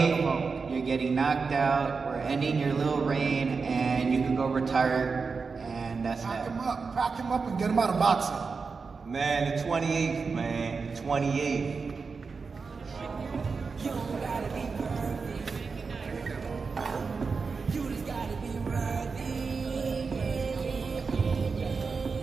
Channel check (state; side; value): quieter; left; 4.8 dB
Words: you're getting knocked out. We're ending your little reign, and you can go retire, and that's that. Pack him up and get him out of boxing. Man, the 28th, man. The 28th.